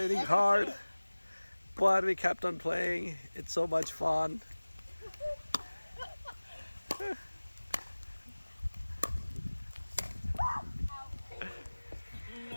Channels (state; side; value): inverted; both; correlation -1.00